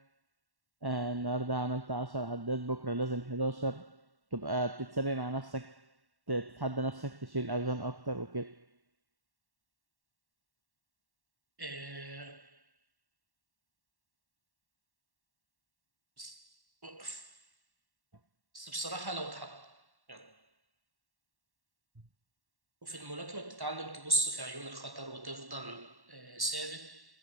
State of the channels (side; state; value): left; late; 1.1 ms